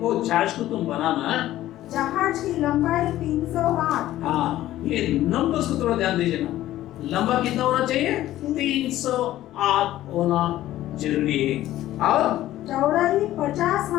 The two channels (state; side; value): quieter; right; 14.2 dB